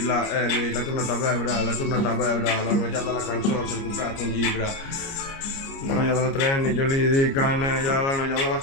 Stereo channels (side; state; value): right; late; 29 ms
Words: tornata a bevere, la tornata a bevere, la noia della canzone, si è comprato un libro. La noia della treni, io li dicono, la noia della